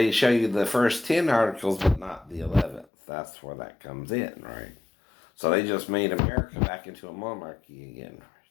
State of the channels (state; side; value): drops out; right; at 2.9 s